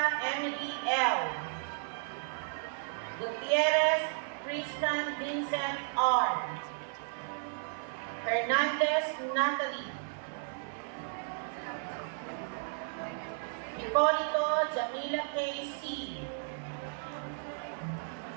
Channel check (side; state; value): left; silent; 55 dB below the other